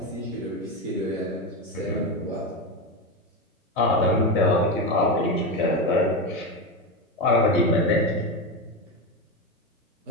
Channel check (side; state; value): both; normal; correlation 0.15